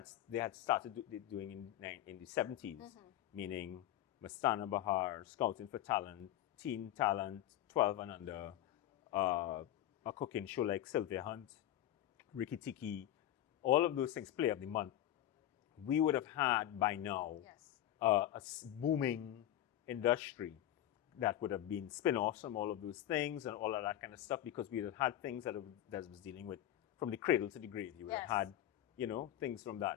they had started doing in the 70s, meaning Mastana Bahar, Scouting for Talent, Teen Talent, 12 and under, a cooking show like Sylvia Hunt, Ricky Tiki, all of those things, Play of the Month, we would have had by now a booming industry that would have been spin-offs from all of those things and all of that kind of stuff, because we would have had things that was dealing with from the cradle to the grave. You would have had, things from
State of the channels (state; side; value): quieter; right; 12.7 dB